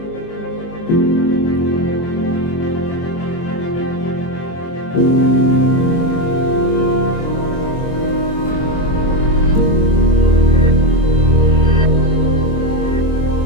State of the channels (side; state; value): right; late; 24 ms